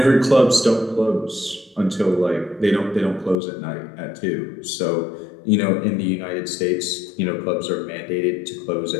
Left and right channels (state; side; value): drops out; right; at 3.4 s